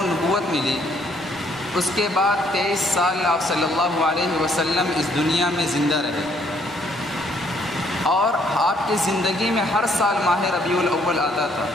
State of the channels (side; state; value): both; normal; correlation 0.67